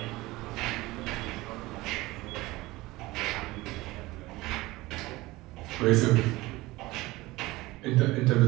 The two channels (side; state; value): left; quieter; 19.8 dB